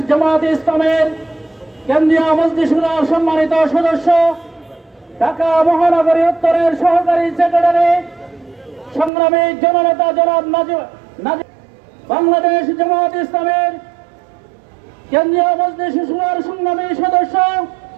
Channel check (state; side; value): drops out; left; at 9.1 s